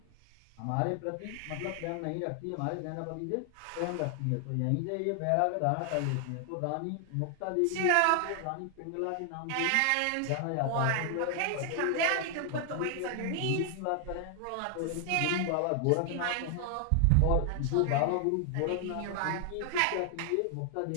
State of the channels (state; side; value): different; both; correlation 0.00